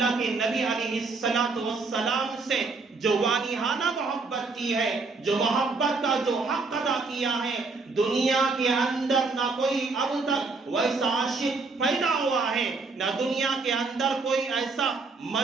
کے نبی علیہ السلام سے جو والہانہ محبت کی ہے، جو محبت کا جو حق ادا کیا ہے، دنیا کے اندر نہ کوئی اب تک ویسا عاشق پیدا ہوا ہے، نہ دنیا کے اندر کوئی ایسا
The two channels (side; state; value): left; quieter; 4.1 dB